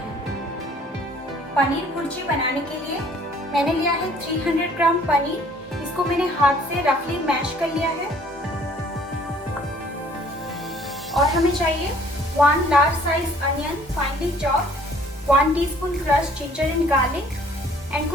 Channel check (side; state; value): both; normal; correlation 0.57